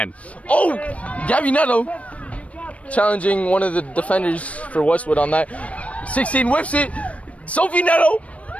Oh, Gabby Neto challenging one of the defenders for Westwood on that. 16 whips it. Sophie Neto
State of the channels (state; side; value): late; right; 0.065 ms